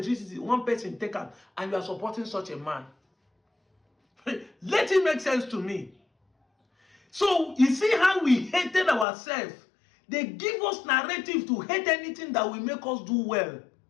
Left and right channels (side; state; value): right; drops out; at 9.1 s